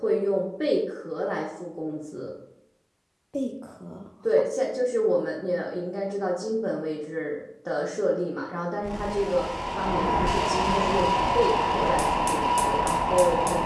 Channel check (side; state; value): both; identical; correlation 1.00